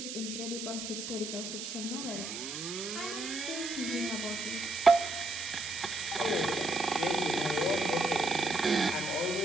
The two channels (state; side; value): noise; right; hiss, 7 dB below the sound